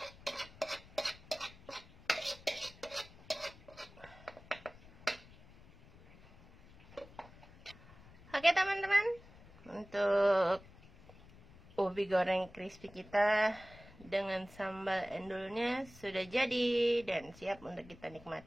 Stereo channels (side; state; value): left; noise; rumble, 22 dB below the sound